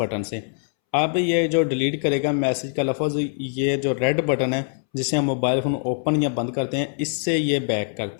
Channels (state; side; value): silent; right; 63 dB below the other